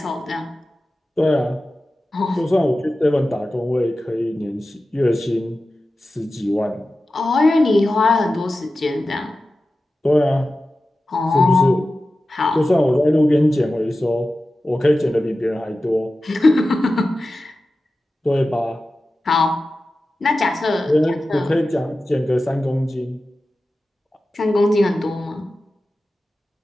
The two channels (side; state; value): both; normal; correlation 0.94